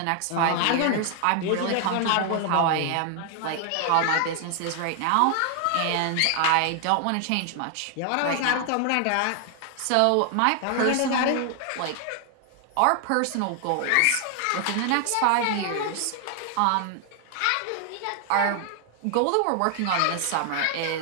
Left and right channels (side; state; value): both; different; correlation 0.00